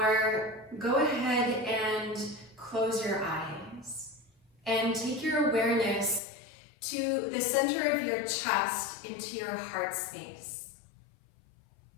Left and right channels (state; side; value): drops out; right; at 6.2 s